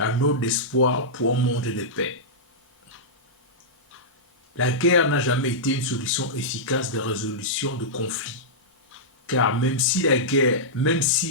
note d'espoir pour un monde de paix. La guerre n'a jamais été une solution efficace de résolution de conflits. Car même si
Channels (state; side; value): normal; both; correlation -0.13